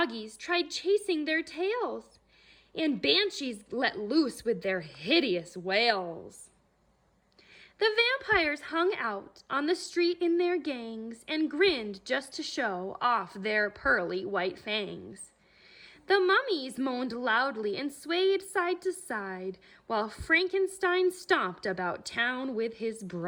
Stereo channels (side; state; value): both; identical; correlation 1.00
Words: tried chasing their tails, and banshees let loose with their hideous wails. The vampires hung out on the street in their gangs and grinned just to show off their pearly white fangs. The mummies moaned loudly and swayed side to side, while Frankenstein stomped about town with his